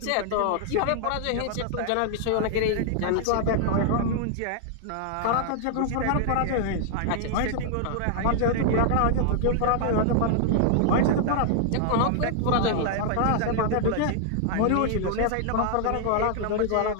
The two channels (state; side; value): different; both; correlation -0.01